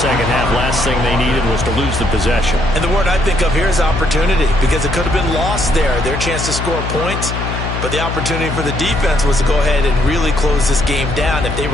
half, last thing they needed was to lose the possession. And the word I think of here is opportunity, because it could have been lost there. Their chance to score points, but the opportunity for the defense was to go ahead and really close this game down if they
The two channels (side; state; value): left; noise; hum, 4 dB below the sound